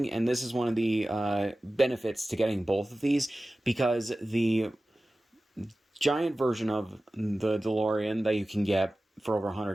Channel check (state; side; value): normal; both; correlation 0.96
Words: And this is one of the benefits to getting both of these, because the giant version of the DeLorean that you can get for over